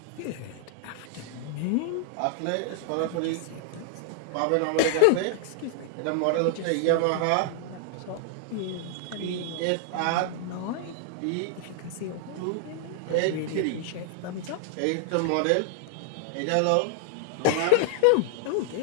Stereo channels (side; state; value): both; different; correlation 0.00